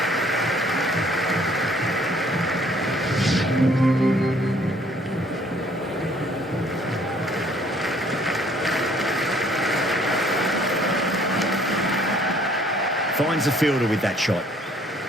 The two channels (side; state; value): both; normal; correlation 0.60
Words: Finds the fielder with that shot.